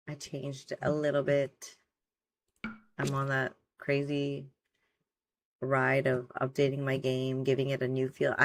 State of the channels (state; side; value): identical; both; correlation 1.00